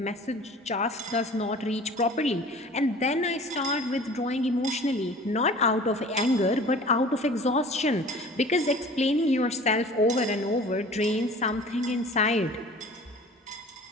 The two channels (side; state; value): both; normal; correlation 0.44